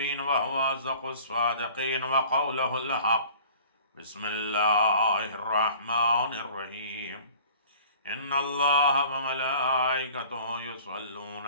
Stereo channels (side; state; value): both; inverted; correlation -0.49